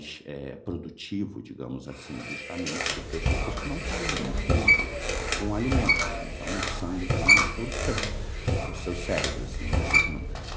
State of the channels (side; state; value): both; identical; correlation 1.00